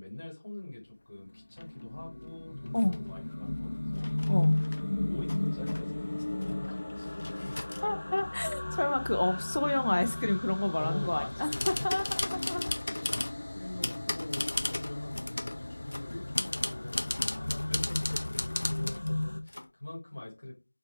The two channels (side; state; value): both; inverted; correlation -1.00